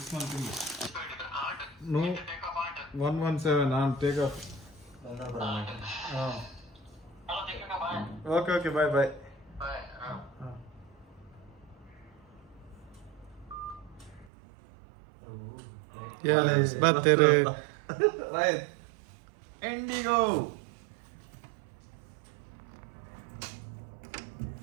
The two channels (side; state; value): left; drops out; at 14.2 s